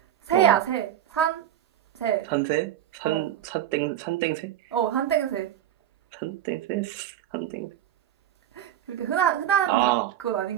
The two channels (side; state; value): left; quieter; 11.3 dB